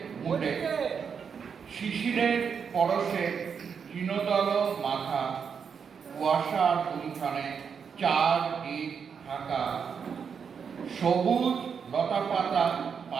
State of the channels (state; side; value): quieter; left; 6.6 dB